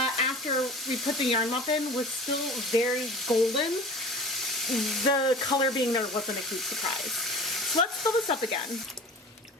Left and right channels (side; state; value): both; normal; correlation 0.39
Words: after we put the yarn mop in, was still very golden, the color being there wasn't a huge surprise. So let's fill this up again.